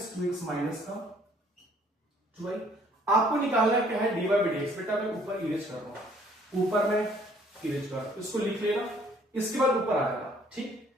2x माइनस का 2y। आपको निकालना क्या है dy बाई dx, बेटा मैं ऊपर इरेज कर रहा हूं, ऊपर में इरेज कर रहा हूं, इसको लिख लेना, इसके बाद ऊपर आएगा। ठीक,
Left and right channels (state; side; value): normal; both; correlation 0.60